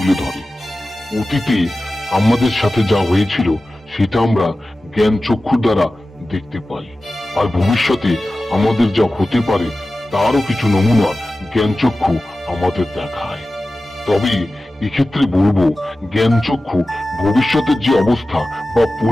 ধরে। অতীতে আমাদের সাথে যা হয়েছিল সেটা আমরা জ্ঞান চক্ষুর দ্বারা দেখতে পাই, আর ভবিষ্যতে আমাদের যা হতে পারে তারও কিছু নমুনা জ্ঞান চক্ষু আমাদের দেখায়। তবে এক্ষেত্রে বলবো, জ্ঞান চক্ষু ভবিষ্যতের যে অবস্থা বা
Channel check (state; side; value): normal; both; correlation 0.95